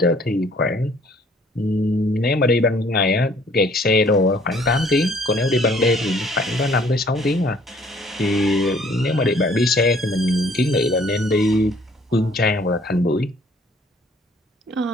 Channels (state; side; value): normal; both; correlation 0.59